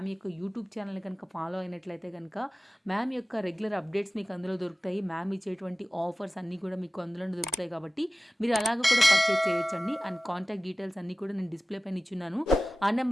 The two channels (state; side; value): normal; both; correlation 0.97